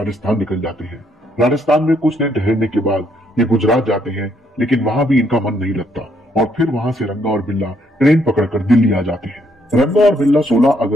निकल जाते हैं। राजस्थान में कुछ दिन ठहरने के बाद ये गुजरात जाते हैं, लेकिन वहां भी इनका मन नहीं लगता और फिर वहां से रंगा और बिल्ला ट्रेन पकड़कर दिल्ली आ जाते हैं। रंगा और बिल्ला 16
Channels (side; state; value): both; normal; correlation 0.72